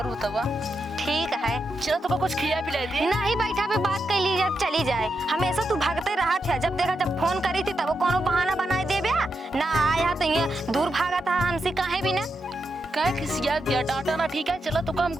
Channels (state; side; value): normal; both; correlation 0.85